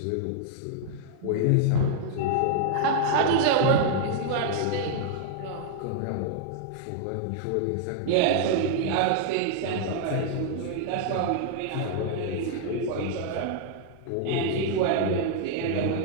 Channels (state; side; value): different; both; correlation 0.00